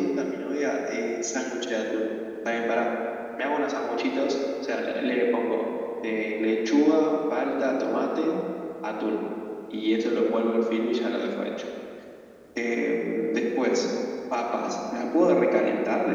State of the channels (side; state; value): both; identical; correlation 1.00